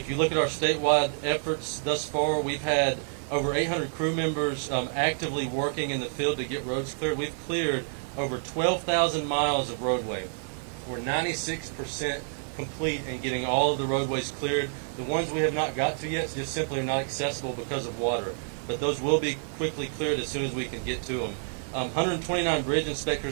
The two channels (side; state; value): left; silent; 59 dB below the other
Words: you look at our statewide efforts thus far, we've had over 800 crew members actively working in the field to get roads cleared. We've cleared over 12,000 miles of roadway. We're 96% complete in getting all of the roadways cleared. The ones we have not got to yet just simply are not accessible because of water. But those will be quickly cleared as soon as we can get to them. 129 bridge